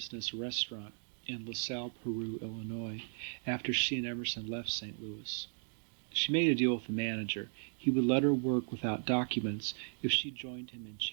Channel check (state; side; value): silent; left; 54 dB below the other